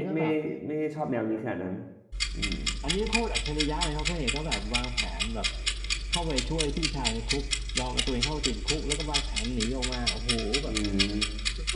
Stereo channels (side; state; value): both; identical; correlation 1.00